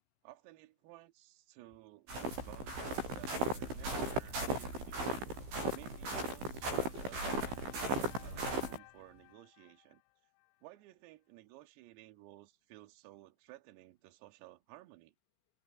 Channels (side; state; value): left; late; 15 ms